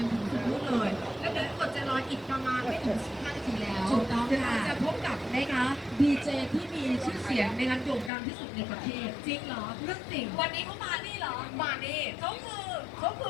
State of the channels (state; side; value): drops out; right; at 8.1 s